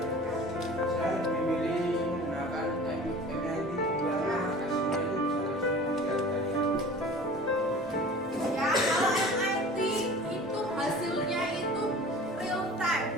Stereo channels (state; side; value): normal; both; correlation 0.42